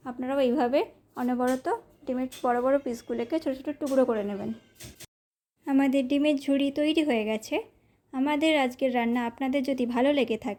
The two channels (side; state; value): both; identical; correlation 1.00